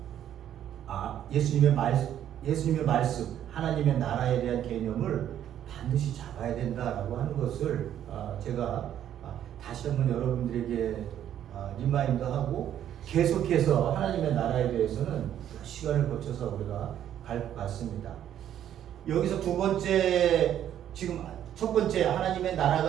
예수님의 말씀, 하나님의 나라에 대한 개념을 반드시 잡아야 된다라고 하는 것을 제가 다시 한번 여러분들에게 리마인드하고 계속해서 하나님의 나라에 대해서는 시간을 거쳐서 우리가 갈 것 같습니다. 여기서 두 번째, 지금 첫 번째 하나님의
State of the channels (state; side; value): quieter; left; 10.6 dB